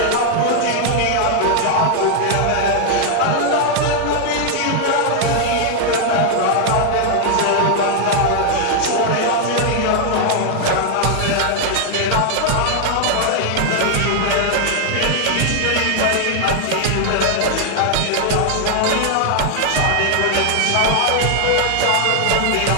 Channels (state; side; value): different; both; correlation 0.00